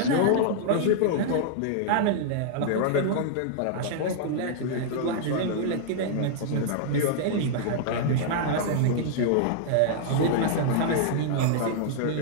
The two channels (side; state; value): both; different; correlation -0.01